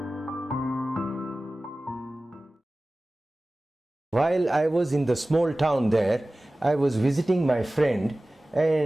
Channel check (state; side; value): normal; both; correlation 0.97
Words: While I was in the small town there, I was visiting my friend,